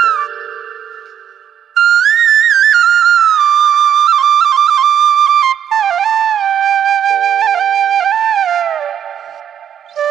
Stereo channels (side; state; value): left; quieter; 9.1 dB